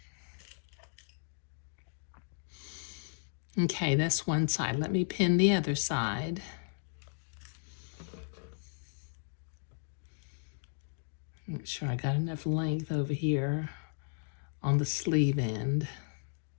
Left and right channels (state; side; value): silent; right; digital silence